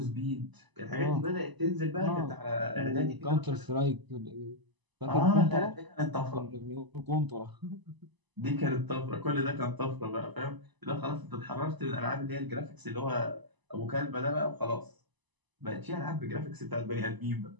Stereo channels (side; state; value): left; late; 1.0 ms